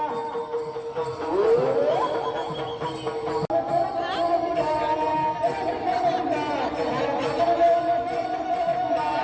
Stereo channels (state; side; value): identical; both; correlation 1.00